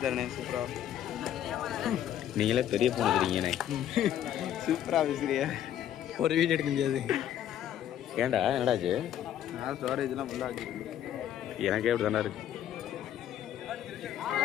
சூப்பராக நீங்களே பெரிய போன் இருக்கிறீங்கண்ணே. சூப்பராக பேசுறியா? ஒரு வீடியோ எடுக்க முடியாது. ஏன்டா என்னடாச்சு? நான் ஸ்டோரேஜ்லாம் ஃபுல்லாக வச்சுருக்கேன். எனக்கே அப்படி தானே இருக்கு.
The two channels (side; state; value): right; quieter; 10.9 dB